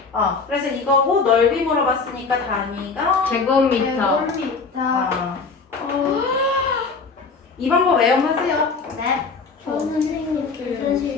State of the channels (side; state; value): right; quieter; 4.6 dB